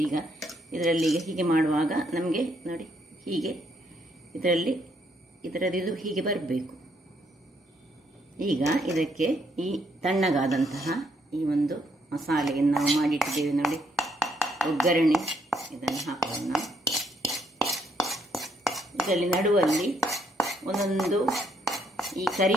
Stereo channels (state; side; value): normal; both; correlation 0.72